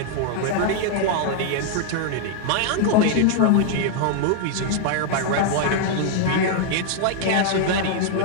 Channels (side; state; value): both; different; correlation 0.00